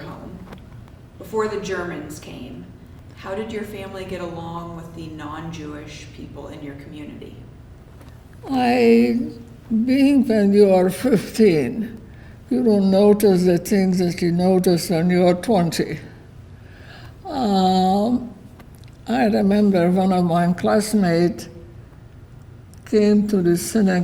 before the Germans came, how did your family get along with the non-Jewish people in your community? Being when you are 15, you don't notice the things that you notice when you are 20. I remember one of my classmates came to the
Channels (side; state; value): both; identical; correlation 1.00